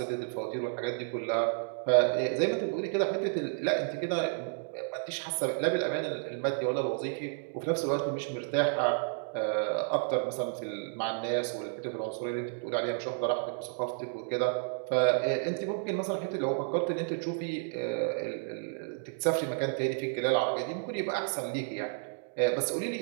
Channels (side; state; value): left; silent; digital silence